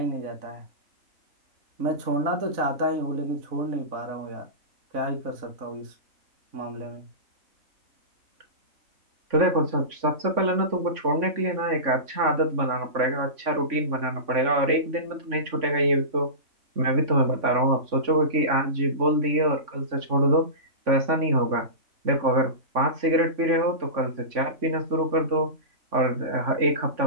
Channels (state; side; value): late; left; 3.5 ms